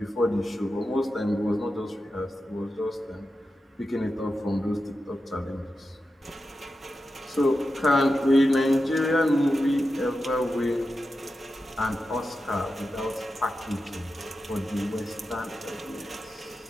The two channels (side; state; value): both; normal; correlation 0.90